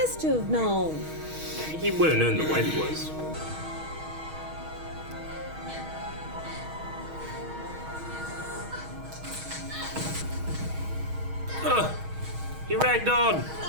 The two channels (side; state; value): left; late; 6.3 ms